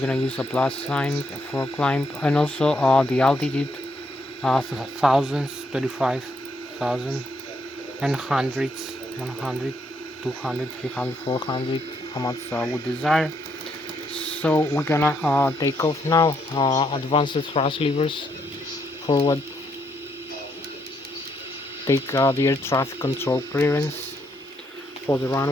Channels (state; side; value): normal; both; correlation 0.75